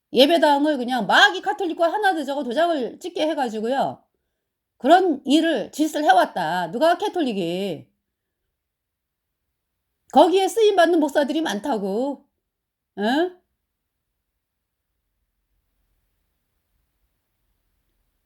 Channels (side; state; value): both; identical; correlation 1.00